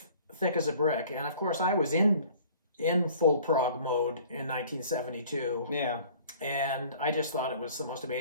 Thick as a Brick. And of course, I was in full prog mode in 1972. Yeah. And I just thought it was the most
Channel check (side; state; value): both; inverted; correlation -0.50